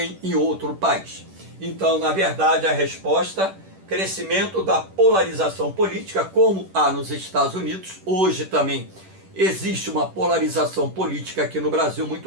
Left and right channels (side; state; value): left; late; 10 ms